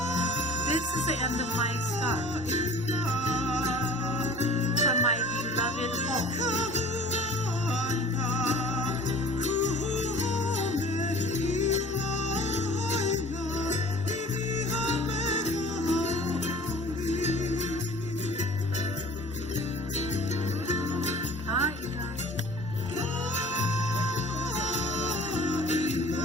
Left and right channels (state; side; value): normal; both; correlation 0.45